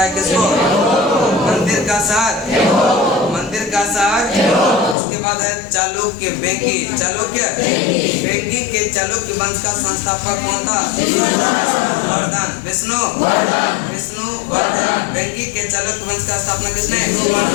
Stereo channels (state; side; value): drops out; right; at 5.0 s